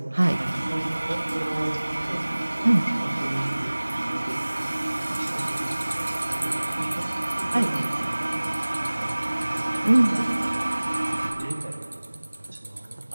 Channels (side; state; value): both; inverted; correlation -1.00